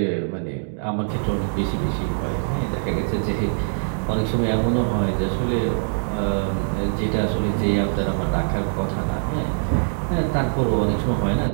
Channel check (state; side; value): silent; left; digital silence